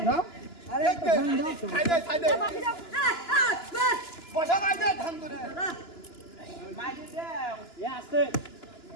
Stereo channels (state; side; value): late; right; 2.9 ms